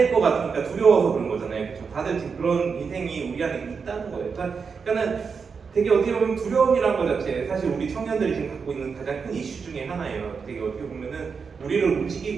것 같으니까 두려워서 그런 거잖아요. 그렇죠? 다들 지금 그런 인생이 우리 안에 있다는 거예요. 그러니까는 되게 어떻게 보면 두려움이란 것 자체 사실 우리 청년들이 지금 갖고 있는 가장 큰 이슈 중에 하나예요. 되게 어떻게 보면은 우리를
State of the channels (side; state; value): left; quieter; 5.6 dB